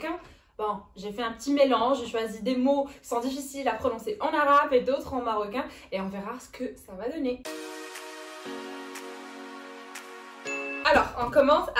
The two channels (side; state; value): both; identical; correlation 1.00